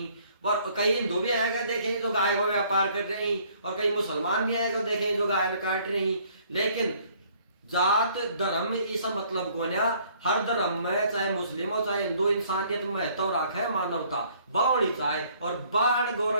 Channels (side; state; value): both; inverted; correlation -0.61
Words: और कई हिंदू भी आएगा देखे जो गाय को व्यापार कर रहे हैं, और कई मुसलमान भी आएगा देखे जो गाय में काट रहे हैं। लेकिन जात धर्म इस मतलब को ना, हर धर्म में चाहे मुस्लिम हो चाहे हिंदू इंसानियत में महत्व रखे मानवता बावणी चाहे, और बाण